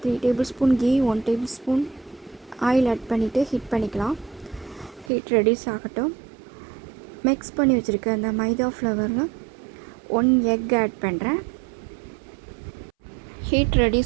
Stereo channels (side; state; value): left; drops out; at 5.1 s